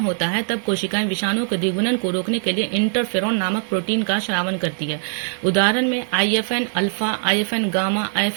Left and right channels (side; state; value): left; silent; 65 dB below the other